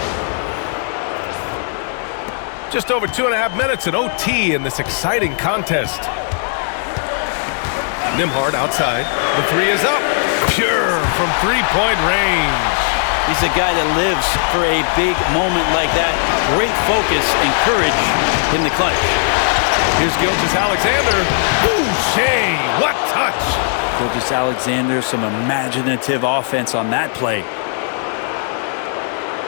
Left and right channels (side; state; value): right; silent; 56 dB below the other